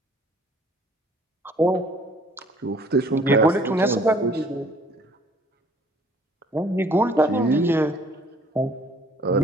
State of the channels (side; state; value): both; normal; correlation 0.57